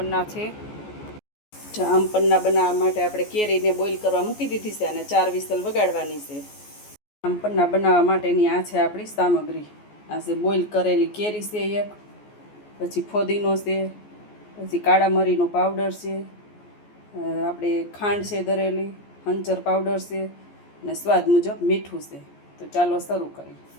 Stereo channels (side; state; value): right; late; 14 ms